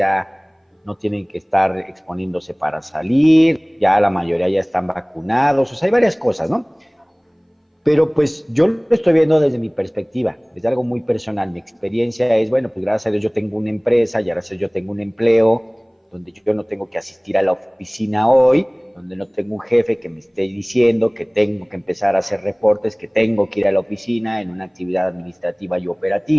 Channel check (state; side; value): identical; both; correlation 1.00